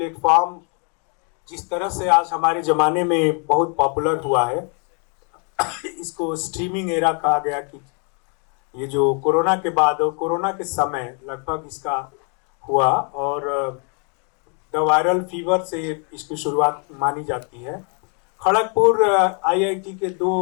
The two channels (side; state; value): right; quieter; 37.7 dB